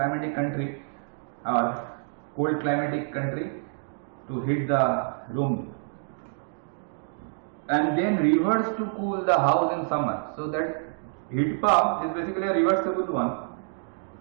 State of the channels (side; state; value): left; silent; digital silence